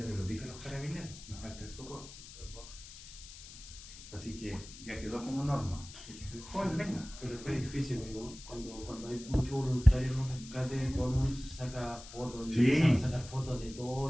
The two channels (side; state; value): left; noise; hiss, 15 dB below the sound